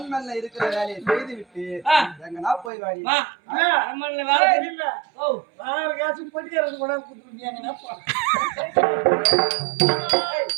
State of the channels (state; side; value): drops out; left; at 2.7 s